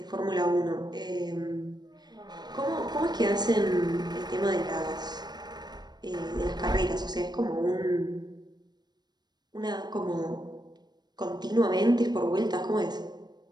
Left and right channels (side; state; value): left; late; 0.20 ms